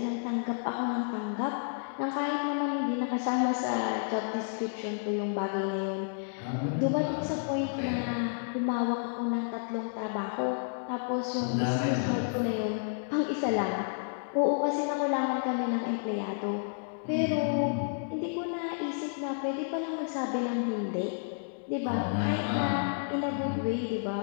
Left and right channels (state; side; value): silent; right; digital silence